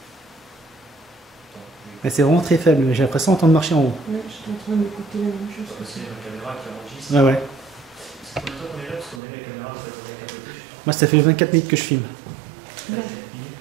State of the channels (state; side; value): drops out; left; at 9.2 s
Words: Attends, Mais c'est vraiment très faible, j'ai l'impression d'entendre marcher en haut. Ouais, j'étais en train d'écouter la même chose. parce qu'il y a ma caméra qui enregistre. Ouais, ouais. C'est combien de temps qu'on est là? Parce qu'on a mis la caméra avec à côté, je sais Moi, ça fait 24 minutes que je filme. pas. Non.